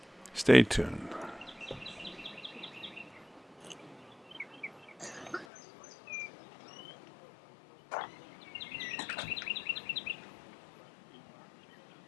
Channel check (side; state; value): right; drops out; at 5.5 s